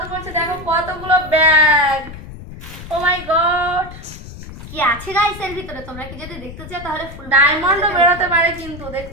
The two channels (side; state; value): left; noise; rumble, 14 dB below the sound